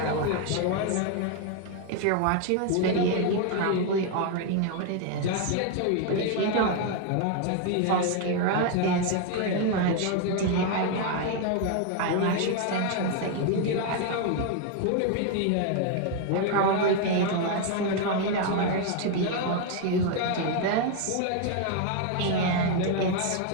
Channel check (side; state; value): both; different; correlation 0.01